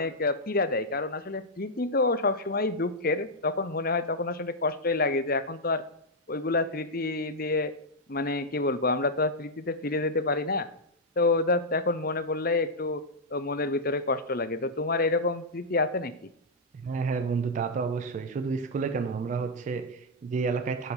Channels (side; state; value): both; normal; correlation -0.04